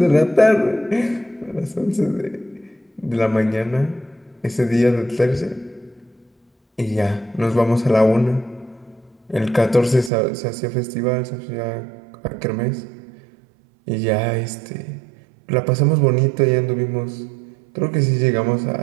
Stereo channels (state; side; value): drops out; left; at 10.1 s